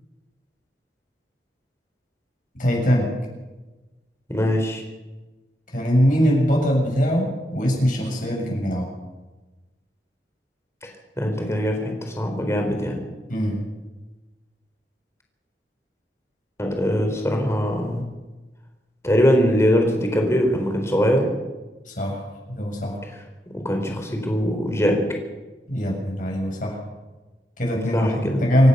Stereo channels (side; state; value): both; normal; correlation 0.82